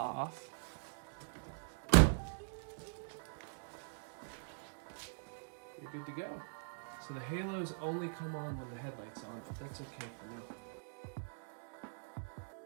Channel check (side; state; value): left; silent; digital silence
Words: You're good to go. So the halos only come on when the headlight's on, but that's okay for now.